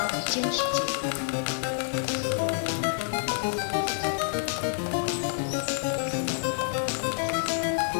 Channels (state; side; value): silent; right; digital silence